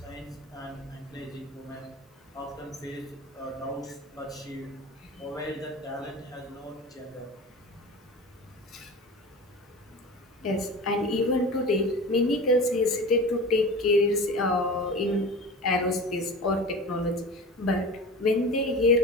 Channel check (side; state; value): both; normal; correlation 0.33